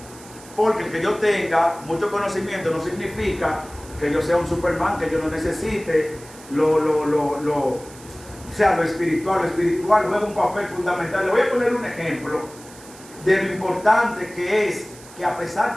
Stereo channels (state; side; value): noise; right; hiss, 20 dB below the sound